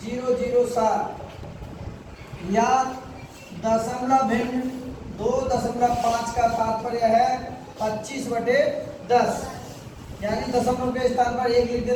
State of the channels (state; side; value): identical; both; correlation 1.00